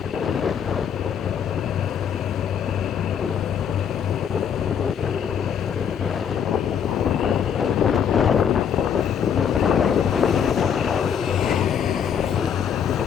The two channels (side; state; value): right; quieter; 8.0 dB